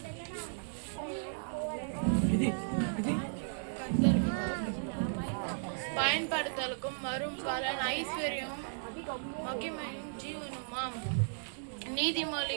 பயன்படுத்தலுக்கும் வரும் பலன் ஐஸ்வர்யம் மகிமையும் ஜீவனுமாம்.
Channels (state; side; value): silent; left; digital silence